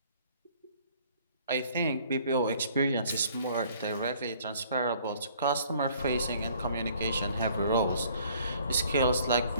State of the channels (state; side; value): inverted; both; correlation -0.58